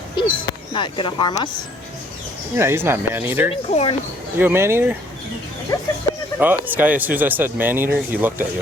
He's not gonna harm us. Yeah, he's not man-eater. Corn. You a man-eater? Oh, this guy, as soon as I said man-eater, he looked at you.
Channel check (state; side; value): normal; both; correlation 0.61